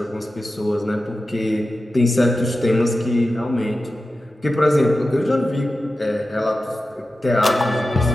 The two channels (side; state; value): both; normal; correlation 0.93